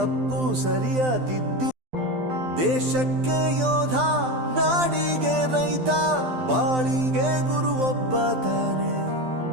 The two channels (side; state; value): left; late; 12 ms